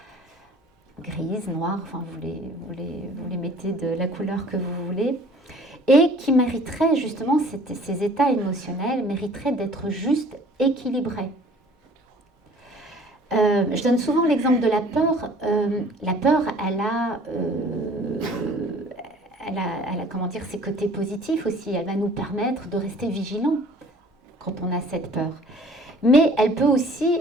grises, noires, enfin vous les mettez de la couleur que vous voulez, et qui mériteraient justement, ces états émotionnels mériteraient d'être juste équilibrés. Je donne souvent l'exemple de la peur. La peur, elle a comment dire, ses côtés positifs aussi. Elle va nous permettre de rester vigilants quand on a cette peur. Mais elle peut aussi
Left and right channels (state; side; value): normal; both; correlation 0.51